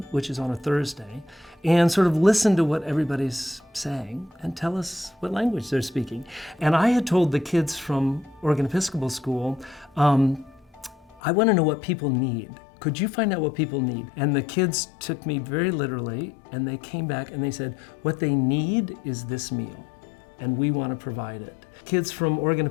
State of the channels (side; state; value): right; drops out; at 11.2 s